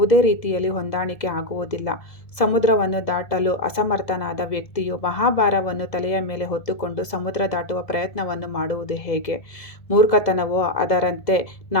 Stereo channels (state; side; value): late; right; 2.0 ms